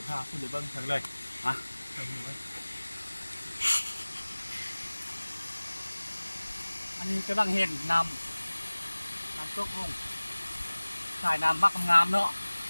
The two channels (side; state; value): both; inverted; correlation -1.00